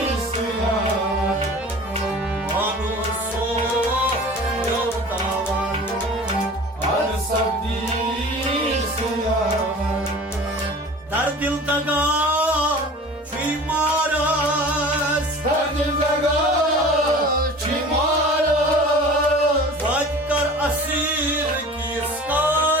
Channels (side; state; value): both; normal; correlation 0.41